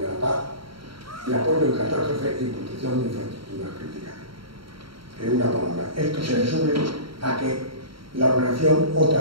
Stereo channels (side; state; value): left; late; 0.74 ms